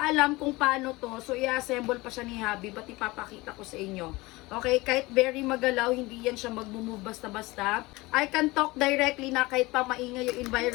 alam kung paano to. So, i-assemble pa siya ni Habi. Ba't ipapakita ko sa inyo. Okay, kahit very magalaw, hindi yan siya mag-move basta-basta. I can talk directly na kahit pa maingay yung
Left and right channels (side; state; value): right; quieter; 21.7 dB